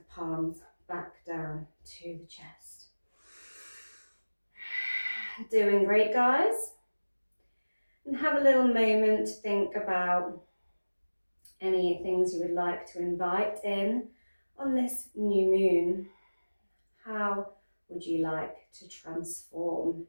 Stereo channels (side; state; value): both; inverted; correlation -1.00